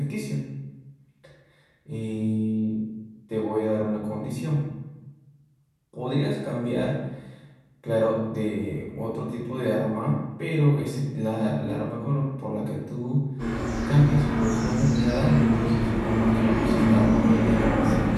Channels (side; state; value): both; identical; correlation 1.00